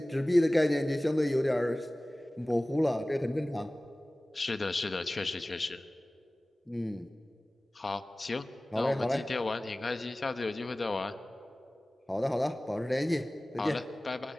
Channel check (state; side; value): normal; both; correlation 0.98